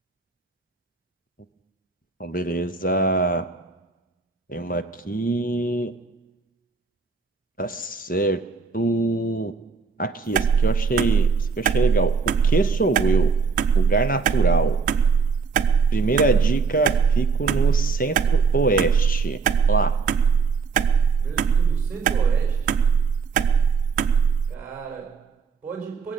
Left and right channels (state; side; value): quieter; left; 4.9 dB